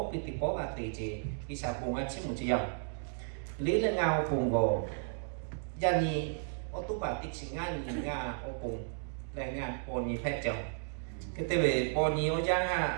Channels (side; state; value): left; silent; digital silence